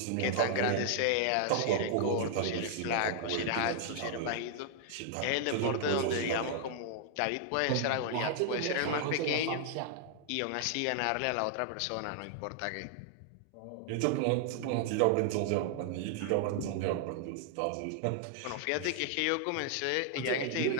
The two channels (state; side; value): different; both; correlation 0.00